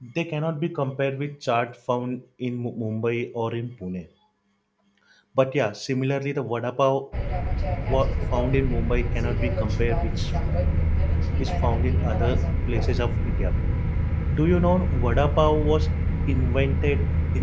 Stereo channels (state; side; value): identical; both; correlation 1.00